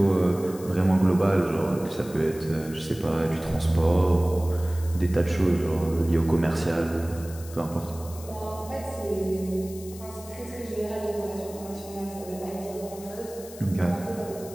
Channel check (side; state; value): left; noise; hiss, 17 dB below the sound